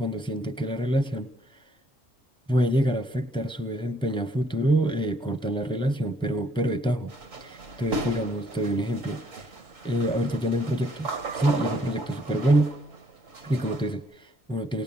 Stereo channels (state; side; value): normal; both; correlation 0.66